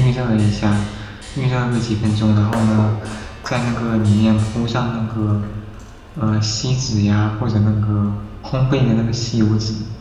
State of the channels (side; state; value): both; identical; correlation 1.00